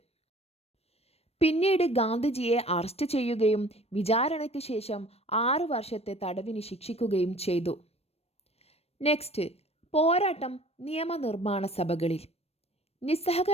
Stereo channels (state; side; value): late; right; 0.29 ms